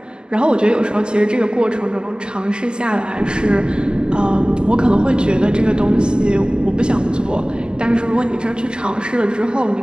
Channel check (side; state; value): left; late; 0.049 ms